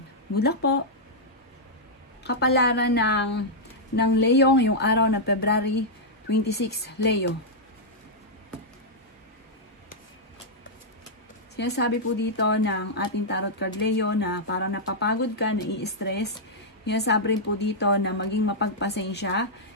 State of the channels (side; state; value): both; normal; correlation -0.07